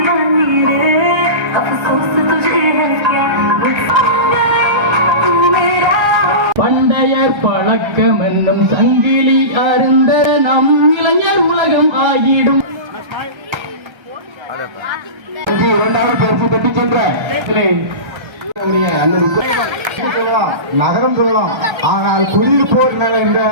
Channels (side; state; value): left; late; 1.3 ms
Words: பண்டையர் பழக்கம் என்னும் சங்கிலி அருந்த நம் இளைஞர் உலகம் ஆகிடும். இரண்டாவது பரிசு பெற்று சென்ற நகரம் சொல்லலாம். ஆனால் குடியிருப்போர் நல என்ற